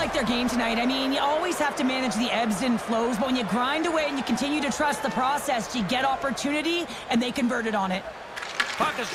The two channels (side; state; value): both; identical; correlation 1.00